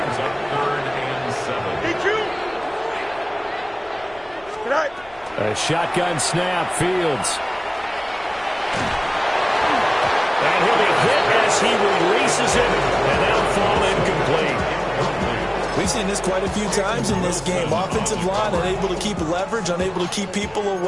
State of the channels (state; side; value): noise; left; rumble, 26 dB below the sound